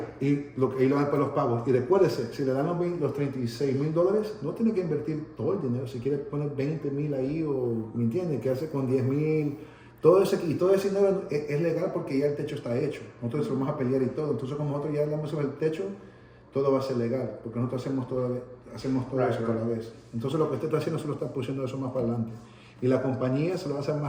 Y lo dan para los pagos. Y recuérdese, si le dan los 36,000 dólares, no tiene que invertir todo el dinero. Si quiere poner 20,000 ahí, o ¿me entiende? Quedarse con 10,000. Todo ese dinero es legal porque ya el techo está hecho. Nosotros vamos a pelear y todo. Entonces, como nosotros ya hablamos sobre el techo, todo va a ser legal, porque nosotros hacemos todo eso a la vez. Entonces, lo que usted está haciendo solo está pusiendo eso más para adelante. Y la compañía se lo va a hacer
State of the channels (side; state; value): both; identical; correlation 1.00